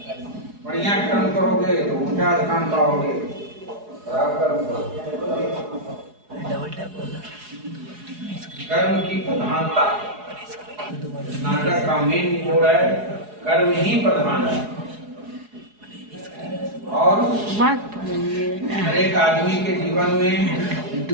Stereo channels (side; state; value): left; late; 4.8 ms